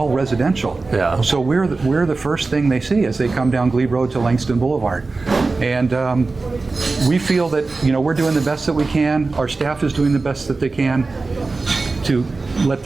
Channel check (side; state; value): left; quieter; 3.7 dB